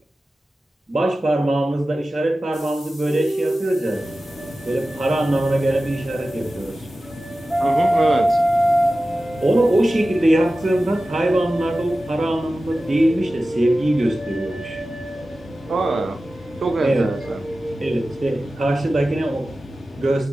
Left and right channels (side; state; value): both; normal; correlation 0.95